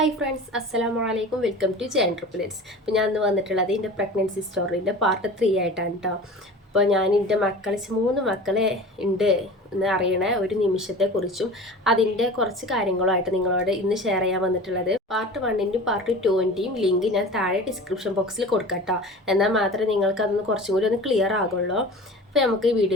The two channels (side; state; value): both; normal; correlation 0.37